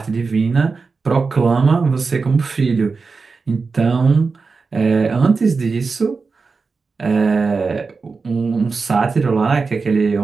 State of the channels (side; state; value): left; quieter; 4.5 dB